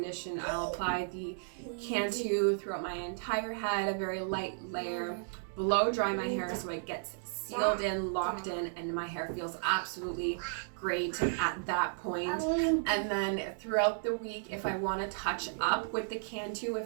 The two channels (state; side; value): silent; left; digital silence